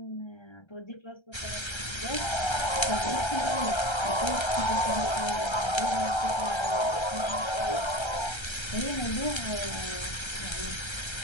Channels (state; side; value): late; right; 1.3 ms